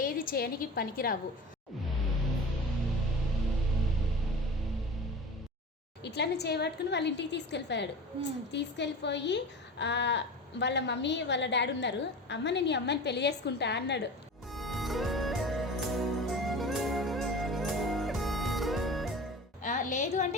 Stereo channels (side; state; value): both; normal; correlation 0.34